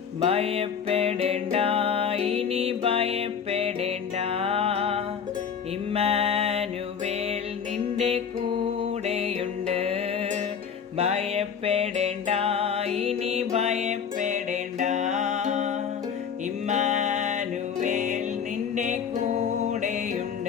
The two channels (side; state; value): right; quieter; 7.2 dB